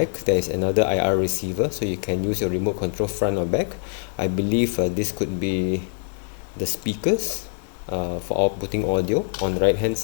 there is another IR receiver, so you can use your remote control front or back. I believe this could be the speakers for outputting audio. On the right hand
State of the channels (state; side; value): silent; right; 63 dB below the other